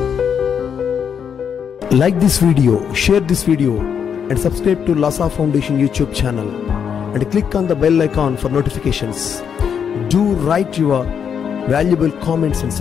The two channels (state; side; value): quieter; right; 7.5 dB